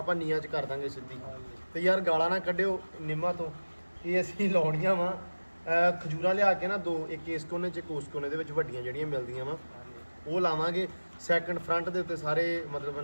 ਨੀਆਂ 'ਚ ਕਰ ਦਾਂਗੇ ਸਿੱਧੀ। ਤੇ ਯਾਰ ਗਾਲਾਂ ਨਾ ਕੱਢਿਓ ਨਿੰਮਾਂ ਤੋਂ, ਇਹ ਅਸੀਂ ਲਾਉਣੀਆਂ ਵਾ ਖਜੂਰਾਂ ਲਿਆ ਕੇ ਨਾ 2, ਇੱਕ ਇਸ ਕੋਨੇ 'ਚ ਇੱਕ ਉਸ ਕੋਨੇ ਦੇ ਵਿੱਚ ਵੱਡੀਆਂ ਜਿਹੜੀਆਂ ਮਿਲਦੀਆਂ ਵਾ ਉਹ ਲਾਵਾਂਗੇ। ਸੈਕੰਡ ਫਰੰਟ ਦੇ ਉੱਤੇ ਸਾਰੇ ਮਤਲਬ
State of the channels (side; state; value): both; inverted; correlation -1.00